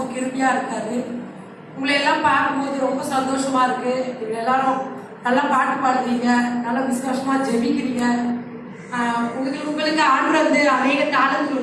கிருபியா இருக்காரு. உங்களை எல்லாம் பார்க்கும்போது ரொம்ப சந்தோஷமா இருக்கு. நீங்க எல்லாரும் நல்லா பாட்டு பாடுறீங்க, நல்லா விசுவாசமா ஜெபிக்கிறீங்க. உங்களுக்கு ஆண்டு வந்து அநேக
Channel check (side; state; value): both; identical; correlation 1.00